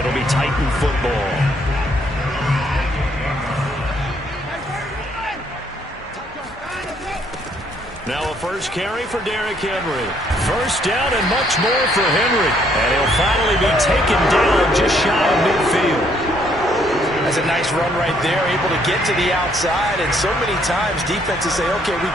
be Titan football. Now a first carry for Derrick Henry. First down and much more for Henry. And he'll finally be taken down just shy of midfield. That's a nice run right there, able to get to the outside. And so many times defenses say, okay, we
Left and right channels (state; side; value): normal; both; correlation 0.68